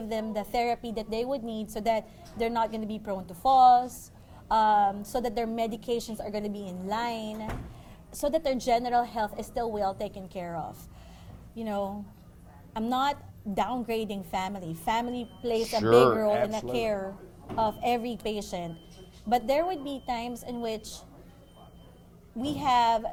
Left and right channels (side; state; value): both; identical; correlation 1.00